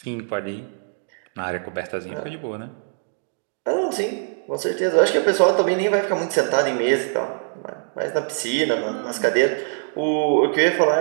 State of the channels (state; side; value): silent; left; digital silence